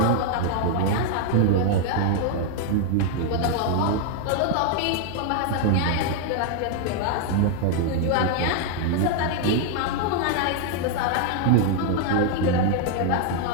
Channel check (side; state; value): both; different; correlation 0.00